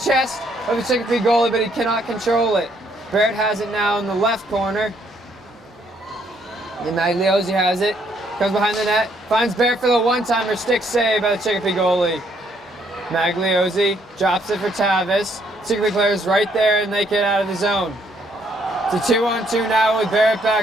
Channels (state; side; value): normal; both; correlation 0.69